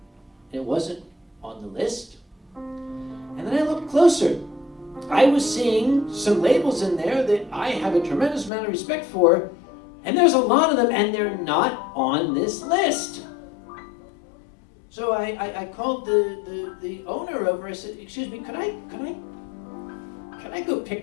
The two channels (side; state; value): right; drops out; at 8.5 s